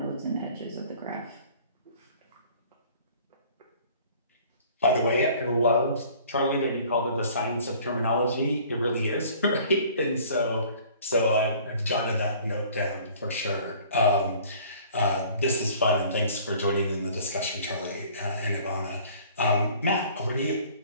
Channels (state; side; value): inverted; both; correlation -0.52